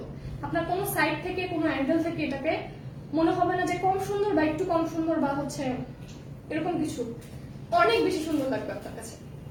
আপনার কোনো সাইড থেকে কোনো অ্যাঙ্গেল থেকে এটাকে মনে হবে না যে কম সুন্দর বা একটু কম সুন্দর বা হচ্ছে এরকম কিছু, অনেক বেশি সুন্দর লাগবে আপনার কাছে।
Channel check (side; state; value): both; identical; correlation 1.00